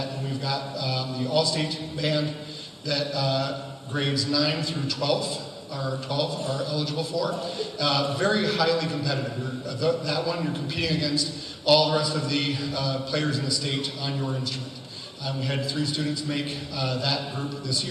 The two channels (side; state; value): both; identical; correlation 1.00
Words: And we've got the all-state band that grades 9 through 12 are eligible for. Very highly competitive. That one, you're competing against all the rest of the players in the state on your instrument. We had 3 students make that group this